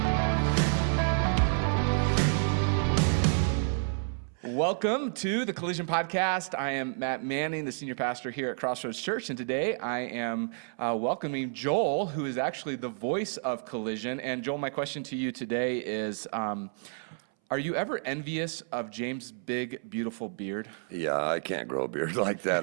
Welcome to the Collision Podcast. I am Matt Manning, the senior pastor here at Crossroads Church, and today I am welcoming Joel, who is actually the voice of Collision. And Joel, my question to you today is, are you ever envious of James' big, beautiful beard? Yeah, I can't grow a beard like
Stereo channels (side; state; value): left; silent; 58 dB below the other